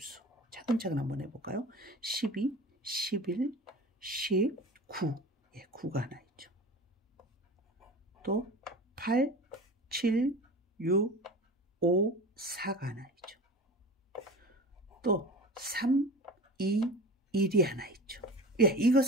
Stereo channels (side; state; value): both; normal; correlation 0.34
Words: 차근차근 한번 해볼까요? 12, 11, 10, 9. 예, 9가 하나 있죠. 또 8, 7, 6, 5, 4가 하나 있죠. 또 3, 2, 1이 하나 있죠. 예, 이거